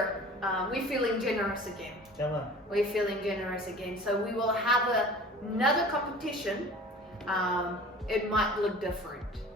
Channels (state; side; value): normal; both; correlation 0.43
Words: we're feeling generous again. Come on. We're feeling generous again. So we will have another competition. It might look different